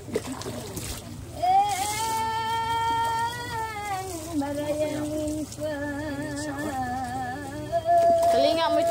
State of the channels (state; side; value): identical; both; correlation 1.00